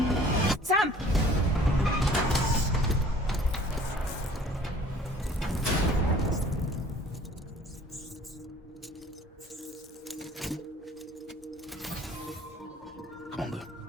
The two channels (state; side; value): normal; both; correlation 0.52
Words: Sam! Come on, Lou.